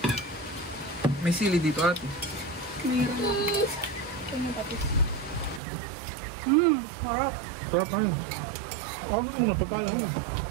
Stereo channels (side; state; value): left; drops out; at 5.6 s